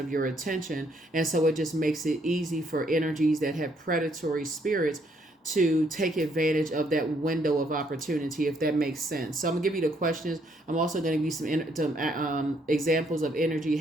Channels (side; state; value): both; normal; correlation 0.70